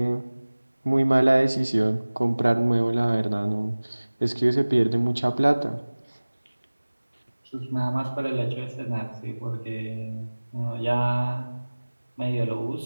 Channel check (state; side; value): inverted; both; correlation -1.00